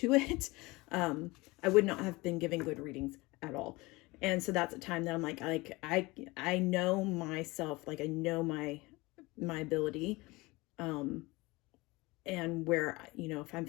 it. I would not have been giving good readings at all. And so that's a time that I'm like I know myself, like I know my ability, and where, if I'm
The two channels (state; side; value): quieter; right; 22.7 dB